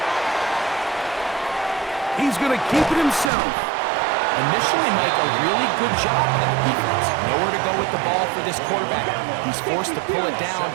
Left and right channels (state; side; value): drops out; left; at 3.3 s